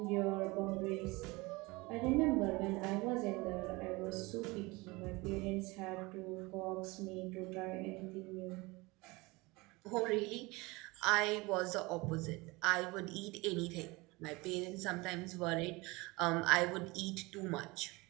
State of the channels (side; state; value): left; quieter; 23.6 dB